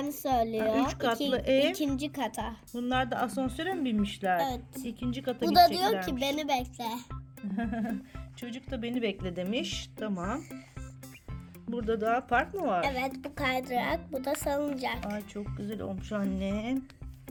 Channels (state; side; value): identical; both; correlation 1.00